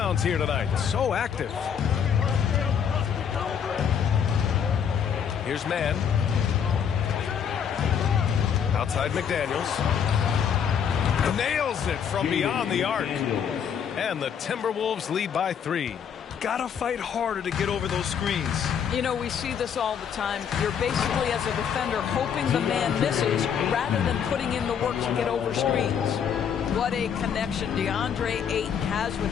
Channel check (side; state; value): right; quieter; 7.8 dB